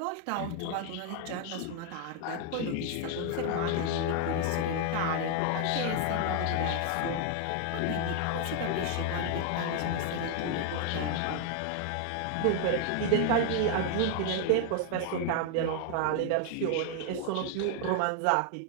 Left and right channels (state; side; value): different; both; correlation 0.01